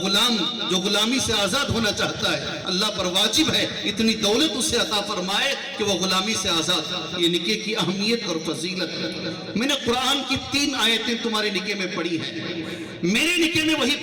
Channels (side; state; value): both; identical; correlation 1.00